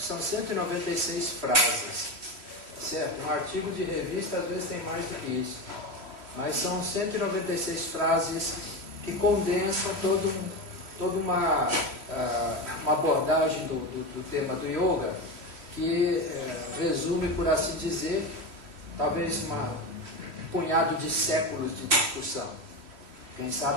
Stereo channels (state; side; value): late; left; 3.1 ms